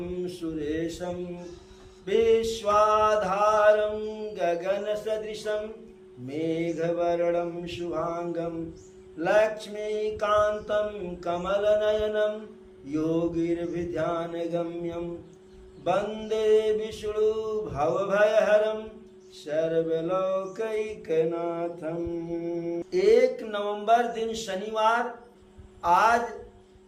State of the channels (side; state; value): both; identical; correlation 1.00